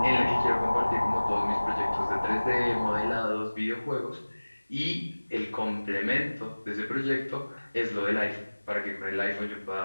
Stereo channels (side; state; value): both; inverted; correlation -1.00